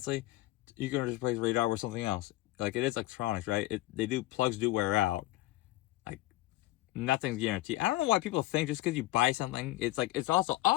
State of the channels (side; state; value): right; quieter; 17.6 dB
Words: you can just replace radar with something else. Like it is electronics, right? Plugs do wear out. Like nothing's guaranteed. I don't know why people think just because you buy something, it's like it's also